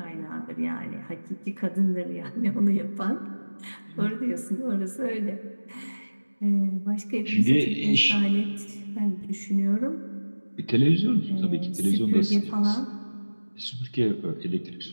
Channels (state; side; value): inverted; both; correlation -1.00